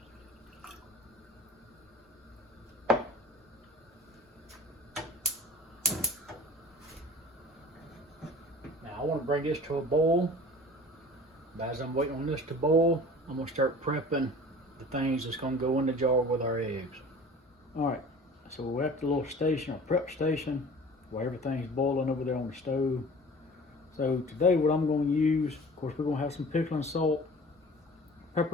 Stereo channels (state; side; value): normal; both; correlation 0.43